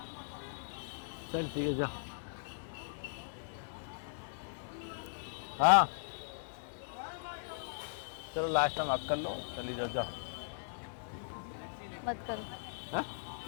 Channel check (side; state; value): right; silent; 52 dB below the other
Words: चल ठीक है, जा। हाँ चलो लास्ट टाइम आप कर लो, चली जाओ, जाओ। मत करो, है?